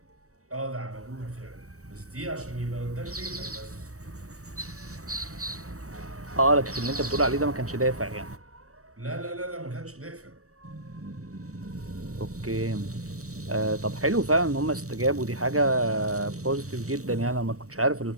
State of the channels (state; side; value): late; left; 0.65 ms